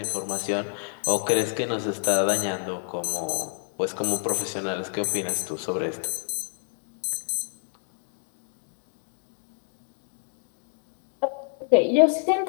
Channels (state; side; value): silent; right; 60 dB below the other